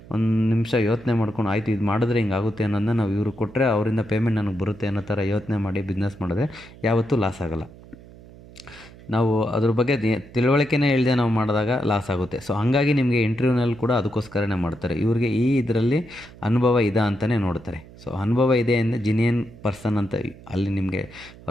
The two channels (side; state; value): right; noise; hum, 20 dB below the sound